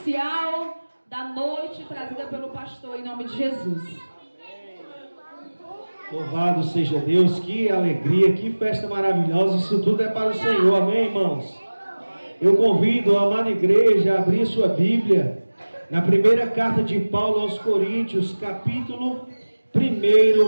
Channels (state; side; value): inverted; both; correlation -1.00